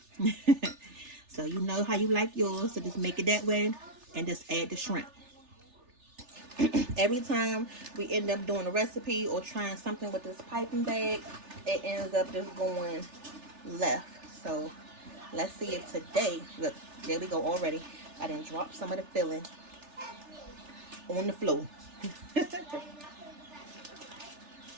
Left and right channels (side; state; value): left; late; 3.4 ms